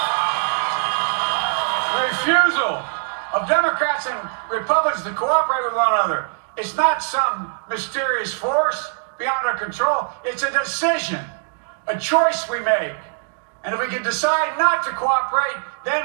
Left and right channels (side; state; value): left; silent; digital silence